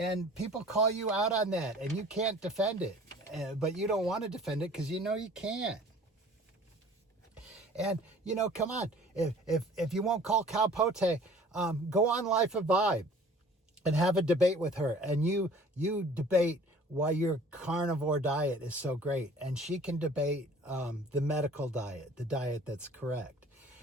people call you out on that and you can't defend it. But you don't want to defend it because you know you can't. And, come on. If you won't call Karl-Pote, go on Life of Vibe and have a debate with her. And you debate why your carnivore diet is so great. And she can debate the medical diet, the diet that's correct.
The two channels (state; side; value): normal; both; correlation 0.49